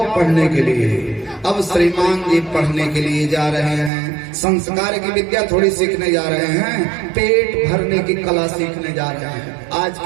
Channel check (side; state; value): left; drops out; at 3.9 s